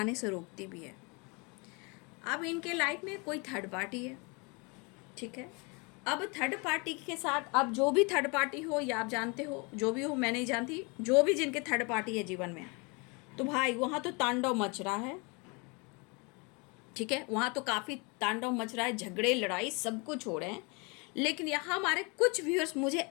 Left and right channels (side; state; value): right; quieter; 30.3 dB